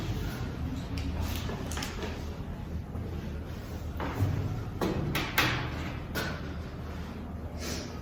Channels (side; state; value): both; identical; correlation 1.00